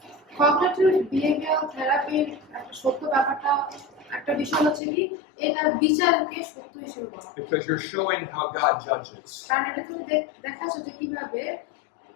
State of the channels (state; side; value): drops out; right; at 4.8 s